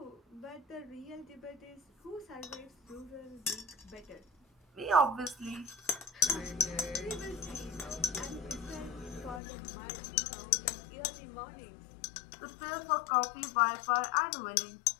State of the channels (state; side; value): drops out; right; at 9.4 s